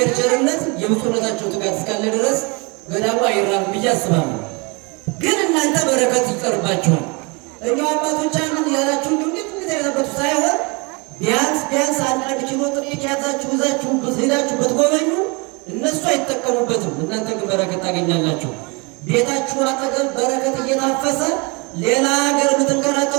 ቸርነት የብፁዕነታቸው ትጋት እስካለ ድረስ ገዳሙ አይራብም ብዬ አስባለሁ። ግን እናንተ በረከት ይቀርባችኋል። እኛው አባቶቻችን ያላችሁ እንዴት ያለበት ሳይሆን ቢያንስ አንድ ኪሎ ጥቂት ያዛችሁ ይዛችሁ ሄዳችሁ ብትጎበኙ እነሱ አይጠቀሙበትም፣ እናንተ ግን በረከት ታገኛላችሁ። ቤታችሁ አጠገብ በረከት እየታፈሰ ሌላ ሀገር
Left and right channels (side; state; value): left; quieter; 29.7 dB